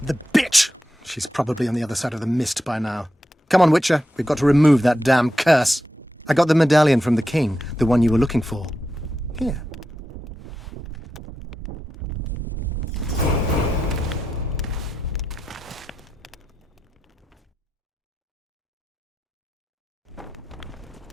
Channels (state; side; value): normal; both; correlation 0.88